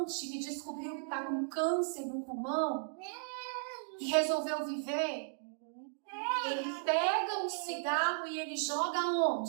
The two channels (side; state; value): left; silent; digital silence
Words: que descobriu que está com câncer no pulmão e resolveu viver. Ele pega um cigarro e ele joga